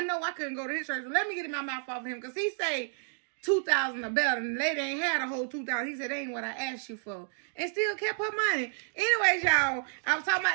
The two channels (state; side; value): silent; left; digital silence